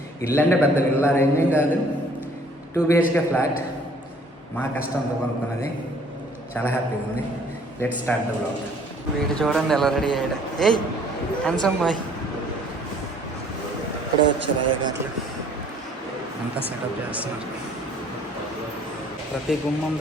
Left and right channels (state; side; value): normal; both; correlation 0.57